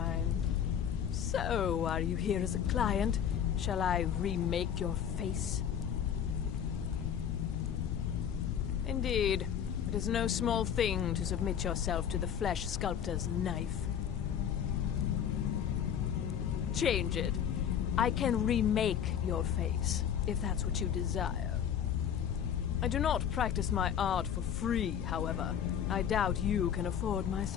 So, are you here as a client? Shall I remake your face? Indeed. It is no small thing to submit yourself to the flesh sculptor's knife. Change it. I can remake your face, if that's what you desire. I do not practice my art for free, however. I doubt you can afford my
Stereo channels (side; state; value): right; quieter; 8.8 dB